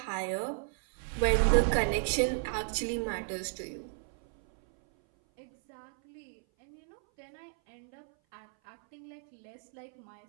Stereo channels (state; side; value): silent; left; 56 dB below the other